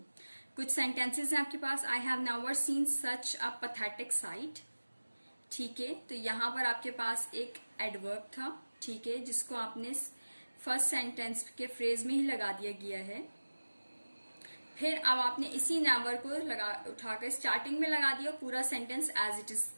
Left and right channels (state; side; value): inverted; both; correlation -1.00